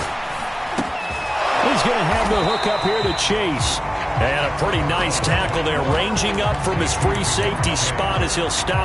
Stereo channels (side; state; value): both; identical; correlation 1.00